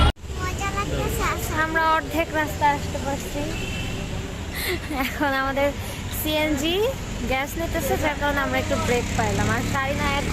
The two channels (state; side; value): identical; both; correlation 1.00